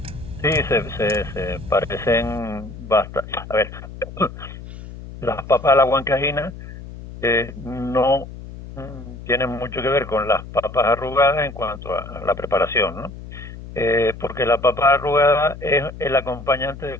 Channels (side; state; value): left; noise; hum, 13 dB below the sound